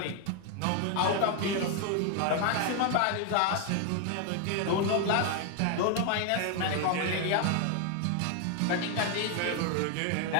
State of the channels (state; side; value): different; both; correlation 0.00